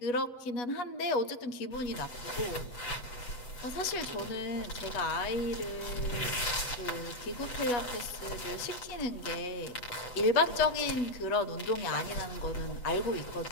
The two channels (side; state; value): right; late; 7.8 ms